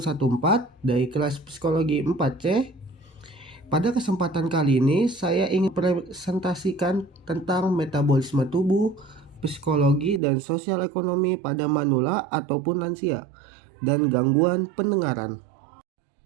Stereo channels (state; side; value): drops out; left; at 10.2 s